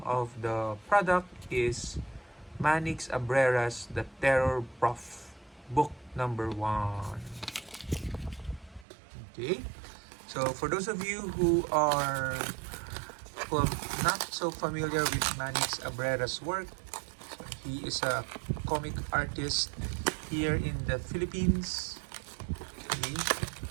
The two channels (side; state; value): left; drops out; at 8.8 s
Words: of the product is Manix Abrera's The Terror Prof, book number 1. Okay, so for those of you who are not so familiar with Manix Abrera's work, he is a comic artist here in the Philippines. Okay.